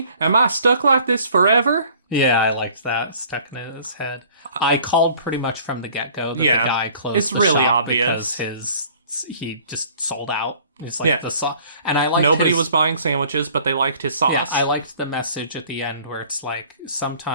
Am I stuck like this forever? Yeah, I liked that. Stuck in his head. I called pretty much from the get-go that the guy closed it's the really shop obvious. because he just sold out. It's like the sauce. And I liked nobody was buying sandwiches, but they liked his sauce. Yeah, I liked the message at the end where it's like,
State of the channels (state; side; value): inverted; both; correlation -0.53